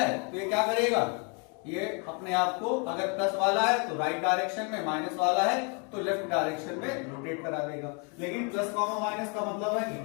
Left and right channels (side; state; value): right; quieter; 35.6 dB